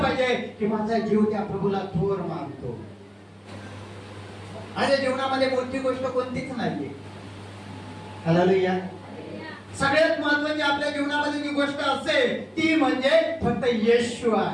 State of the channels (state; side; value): identical; both; correlation 1.00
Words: पाहिजे की माझा जीव त्या प्रभूला थोर मानतो. माझ्या जीवनामध्ये मोठी गोष्ट कोणतीच नाहीये. हालेलुया. सगळ्यात महत्त्वाची आपल्या जीवनामध्ये जी गोष्ट असेल ती म्हणजे फक्त येशू